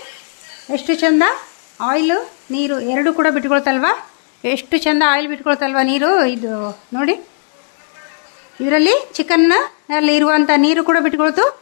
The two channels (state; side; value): silent; right; digital silence